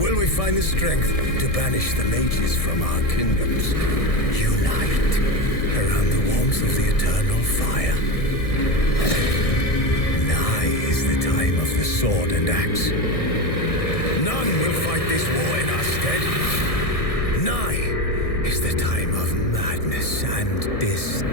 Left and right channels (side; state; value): right; late; 1.6 ms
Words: we find the strength to banish the mages from our kingdoms? Unite around the warmth of the eternal fire. Nigh is the time of the sword and axe. None will fight this war in our stead. Nigh is the time of madness and